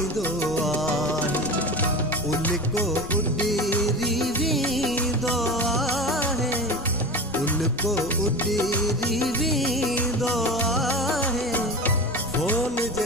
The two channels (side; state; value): both; normal; correlation 0.29